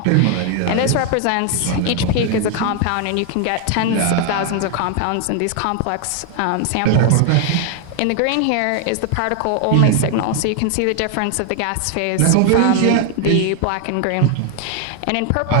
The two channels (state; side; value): different; both; correlation 0.00